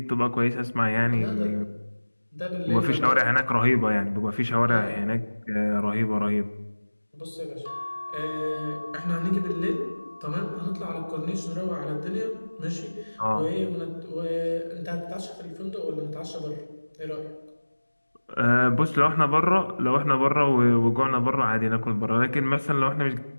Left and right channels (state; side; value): inverted; both; correlation -1.00